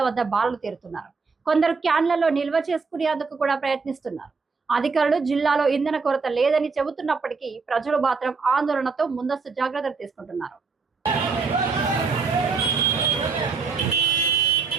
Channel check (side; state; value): left; quieter; 4.8 dB